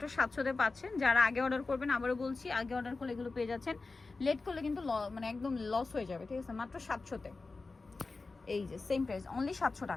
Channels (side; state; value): right; quieter; 3.8 dB